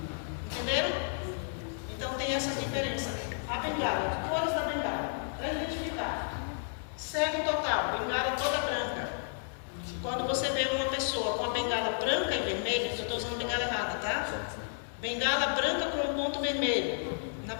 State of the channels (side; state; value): right; silent; digital silence